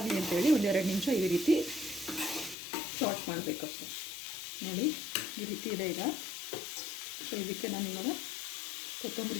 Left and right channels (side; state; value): right; drops out; at 2.6 s